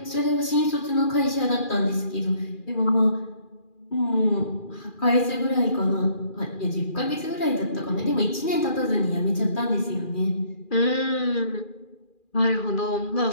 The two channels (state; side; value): late; right; 2.4 ms